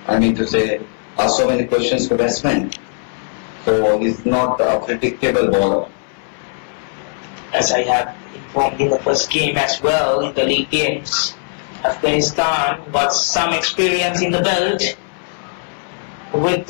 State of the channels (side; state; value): right; silent; 62 dB below the other